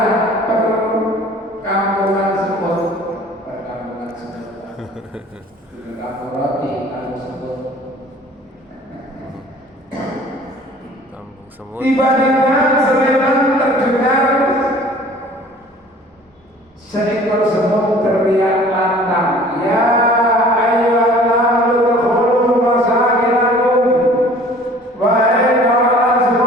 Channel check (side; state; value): both; normal; correlation 0.49